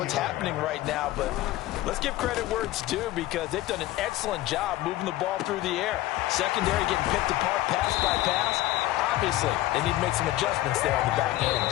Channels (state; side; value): quieter; right; 16.2 dB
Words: happening right now. But let's give credit where it's due, because they've done an excellent job moving the ball through the air. Secondary getting picked apart pass by pass. Obviously, they need to make some adjustments there on the back